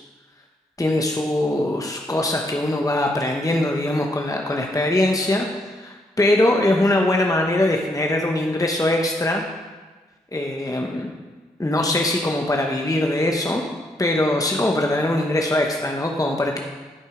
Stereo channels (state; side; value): normal; both; correlation 0.74